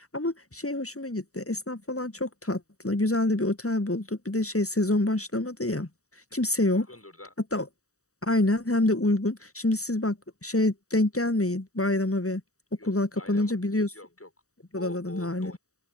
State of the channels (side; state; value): right; late; 0.65 ms